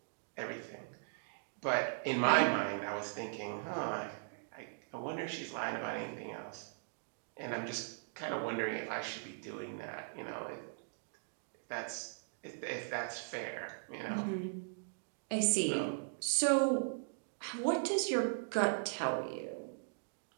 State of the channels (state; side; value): silent; left; digital silence